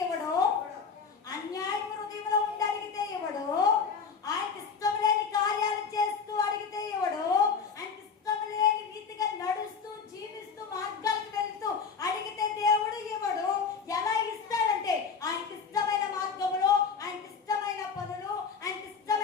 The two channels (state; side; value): quieter; right; 5.8 dB